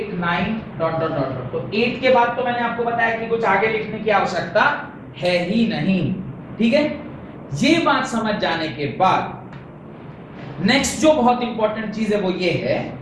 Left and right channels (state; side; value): identical; both; correlation 1.00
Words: 9 dot dot dot. तो 8 के बाद तो मैंने आपको बताया कि कुछ आगे लिखने की आवश्यकता है ही नहीं, ठीक है। ये बात समझ जाने के बाद नेक्स्ट जो बहुत इंपॉर्टेंट चीज है वो ये है